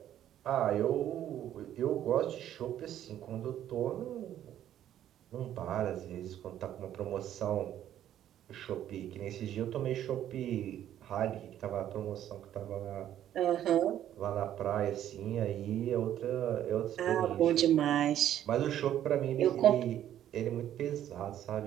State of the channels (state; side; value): quieter; left; 11.4 dB